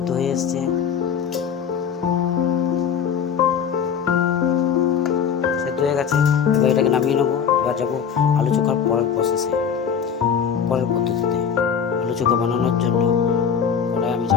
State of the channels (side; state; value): right; quieter; 7.4 dB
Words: হয়ে এসছে। সেদ্ধ হয়ে গেছে, এবার এটাকে নামিয়ে নেবো। এবার যাবো আলু চোখার পরের প্রসেসে, পরের পদ্ধতিতে। আলু চোখা বানানোর জন্য কড়াই আমি